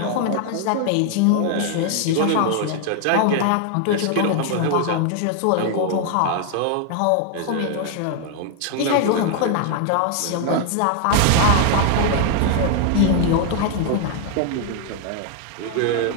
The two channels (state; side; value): different; both; correlation 0.00